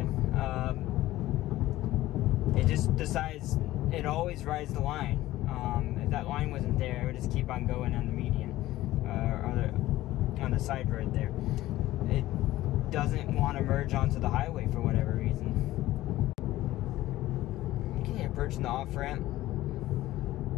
It just decides, it always rides the line. If that line wasn't there, it would just keep on going on the median, on the side road there. It doesn't want to merge onto the highway for whatever reason. Okay, approaching the off-ramp.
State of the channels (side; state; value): right; quieter; 16.0 dB